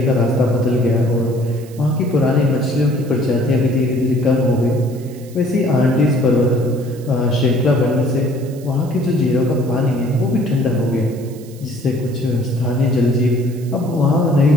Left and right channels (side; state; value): right; noise; hiss, 23 dB below the sound